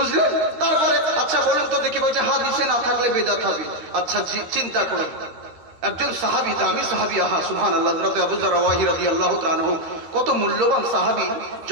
তারপরে আচ্ছা বলুন তো দেখি বলছে হাদিসে না থাকলে বেদাত হবে আচ্ছা চিন্তা করুন একজন সাহাবী দামি সাহাবী সুবহানাল্লাহ হযরত আবু যর রাদিয়াল্লাহু তাআলা আনহু কত মূল্যবান সাহাবী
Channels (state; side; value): late; left; 13 ms